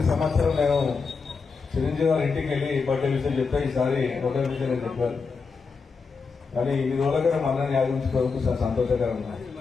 సంవత్సరం నేను చిరంజీవి గారి ఇంటికి వెళ్ళి బర్త్డే విషయం చెప్తే ఈసారి ఒకటే విషయం నేను చెప్పాను. కానీ ఈ రోజుగా మన యాదించుకోవడానికి చాలా సంతోషకరంగా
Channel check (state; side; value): quieter; right; 4.9 dB